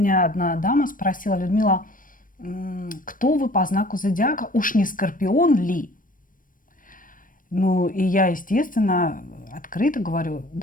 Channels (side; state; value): right; late; 0.40 ms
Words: одна дама спросила: Людмила, кто вы по знаку зодиака? Уж не Скорпион ли? Ну, и я, естественно, открыто говорю: